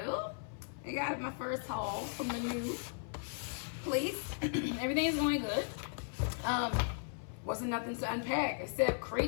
I got my first haul from the new place. Everything is going good. Wasn't nothing to unpack except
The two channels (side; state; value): right; silent; 53 dB below the other